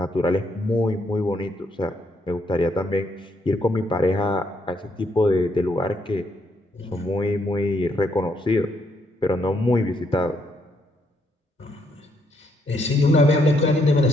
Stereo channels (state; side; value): normal; both; correlation 0.73